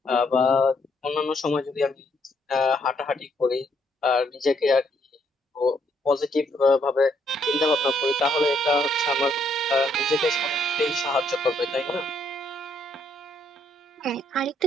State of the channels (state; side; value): normal; both; correlation 0.71